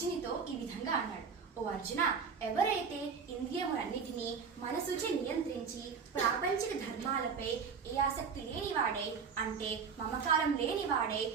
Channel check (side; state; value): left; quieter; 5.9 dB